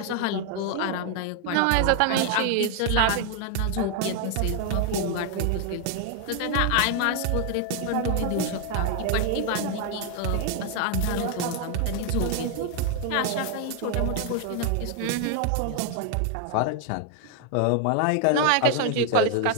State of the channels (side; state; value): both; different; correlation 0.00